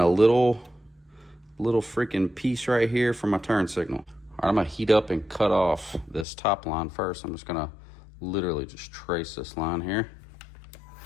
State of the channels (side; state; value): right; drops out; at 6.2 s